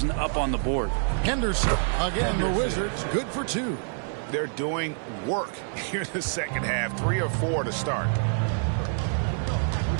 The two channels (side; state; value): left; silent; 60 dB below the other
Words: up on the board. Henderson, again, the Wizards, good for 2. They're doing work here in the second half. 3 or 4 to start.